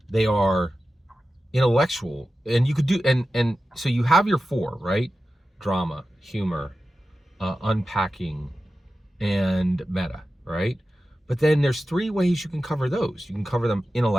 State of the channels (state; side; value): normal; both; correlation 0.93